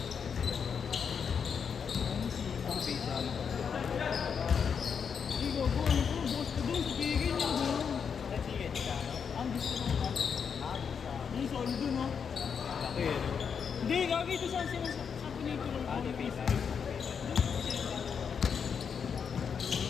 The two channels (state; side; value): quieter; right; 6.7 dB